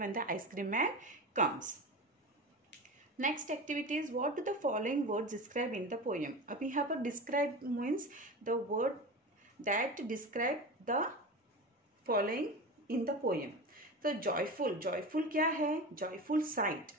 the ice cream man comes. Next activity is what do the following words describe in the poem. अब यहाँ पर describe means the word that describe the following in the poem. तो joyful क्या है, joyful site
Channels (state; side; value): normal; both; correlation 0.28